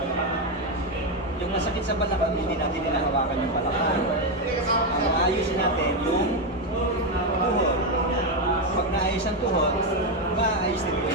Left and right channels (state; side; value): normal; both; correlation 0.07